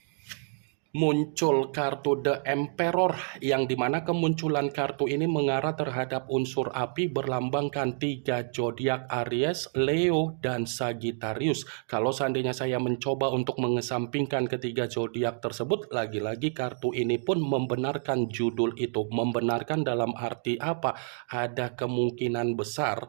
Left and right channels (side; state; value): left; silent; digital silence